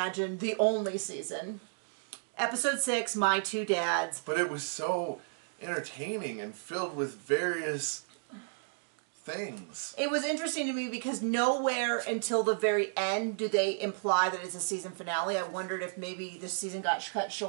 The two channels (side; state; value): left; silent; digital silence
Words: the only season. Episode 6, My Two Dads. But it was so entertaining and filled with various things. It was interesting to me because nowhere until the very end do they imply that it's a season finale. I wondered if maybe this season got cut